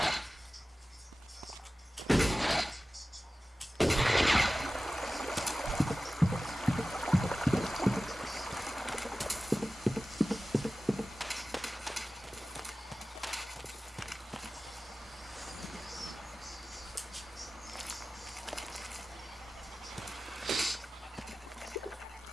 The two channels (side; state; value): both; normal; correlation 0.96